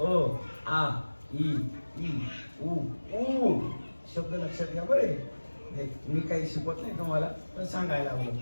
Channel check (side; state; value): both; inverted; correlation -1.00